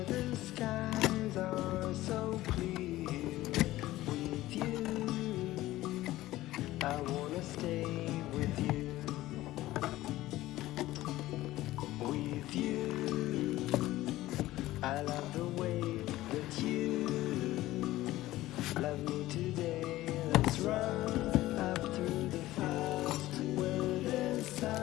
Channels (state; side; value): quieter; right; 16.4 dB